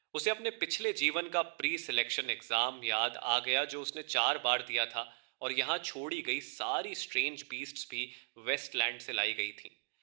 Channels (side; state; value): left; silent; digital silence